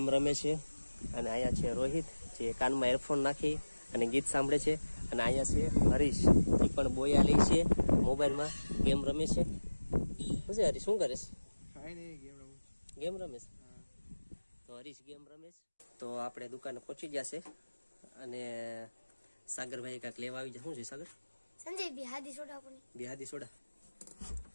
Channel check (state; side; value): inverted; both; correlation -1.00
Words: રમે છે. અને અહીંયા છે રોહિત જે કાનમાં એરફોન નાખી અને ગીત સાંભળે છે. અને અહીંયા છે હરીશ, એ પણ બોયા લે છે, મોબાઈલમાં ગેમ રમે છે. શું છે હરીશ, શું કરે છે? ગેમ રમે છે. તો હરીશ ગેમ રમે છે. તો આપણે દુકાને પહોંચી ગયા છે. અને સાગરભાઈ કાંઈક લેવા આવી જાય. શું છે સાગર? સંજય બિહાદી સોડા પણ બિહાદી સોડા.